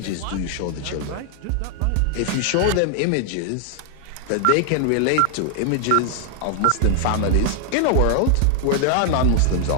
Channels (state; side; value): different; both; correlation 0.00